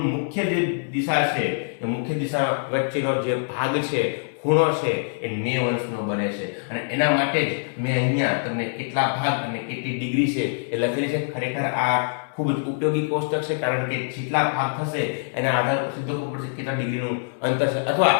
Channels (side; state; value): right; silent; digital silence